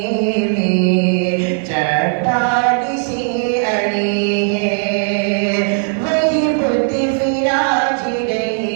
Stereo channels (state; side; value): silent; left; 61 dB below the other